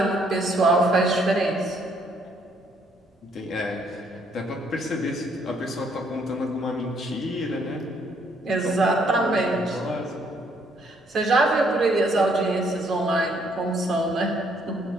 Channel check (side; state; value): both; normal; correlation 0.68